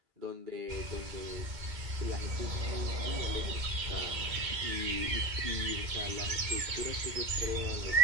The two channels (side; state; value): left; late; 2.1 ms